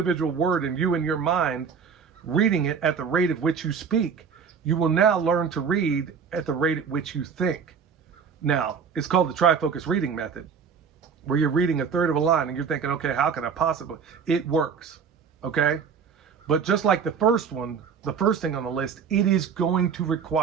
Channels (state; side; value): quieter; left; 6.4 dB